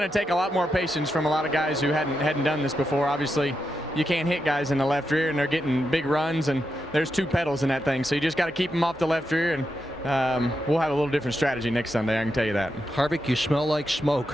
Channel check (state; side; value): normal; both; correlation 0.86